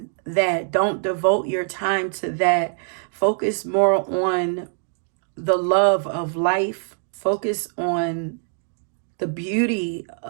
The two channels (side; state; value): left; silent; 56 dB below the other